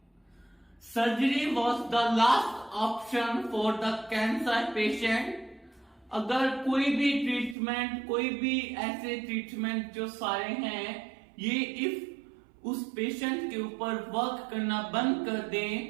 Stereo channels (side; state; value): left; drops out; at 7.6 s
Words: Surgery was the last option for the cancer patient. अगर कोई भी ट्रीटमेंट, कोई भी ऐसे ट्रीटमेंट जो सारे हैं ये इफ उस पेशेंट के ऊपर वर्क करना बंद कर